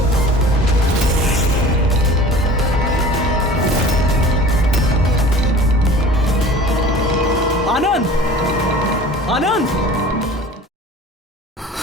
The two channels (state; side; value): normal; both; correlation 0.43